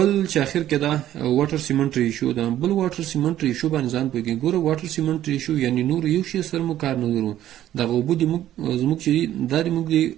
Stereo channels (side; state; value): left; quieter; 12.4 dB